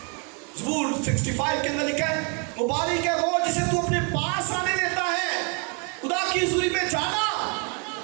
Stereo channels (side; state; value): left; quieter; 34.1 dB